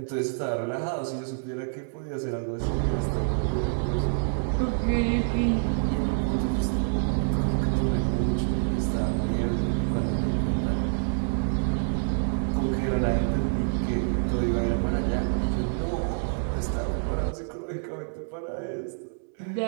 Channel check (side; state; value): left; silent; digital silence